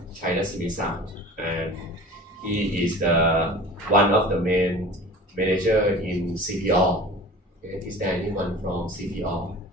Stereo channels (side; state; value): both; normal; correlation 0.40